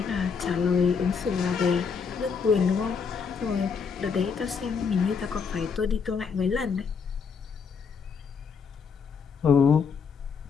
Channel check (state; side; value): quieter; right; 5.9 dB